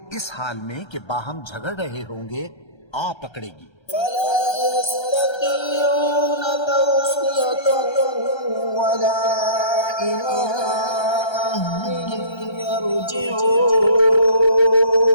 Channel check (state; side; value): late; right; 1.3 ms